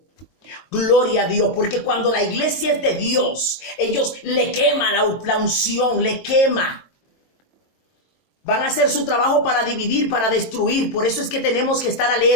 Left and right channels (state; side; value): late; right; 22 ms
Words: Gloria a Dios, porque cuando la iglesia es de Dios, ellos le queman la unción, le quema. Van a hacer su trabajo para dividir, para destruir. Por eso es que tenemos que estar